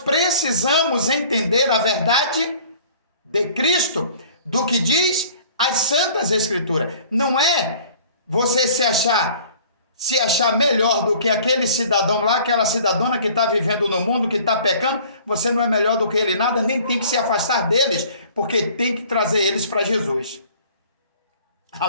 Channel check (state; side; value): inverted; both; correlation -0.51